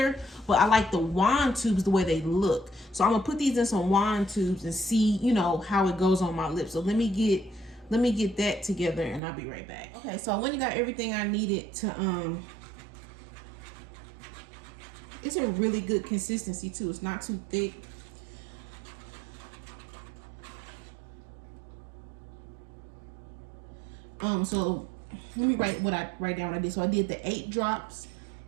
but I like the wand tubes the way they look. So I'm gonna put these in some wand tubes and see, you know, how it goes on my lips. So let me get that together and I'll be right back. Okay, so I went and got everything I needed to it's a really good consistency too. It's not too thick. So let me write down what I did. So I did the 8 drops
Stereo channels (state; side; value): drops out; left; at 9.2 s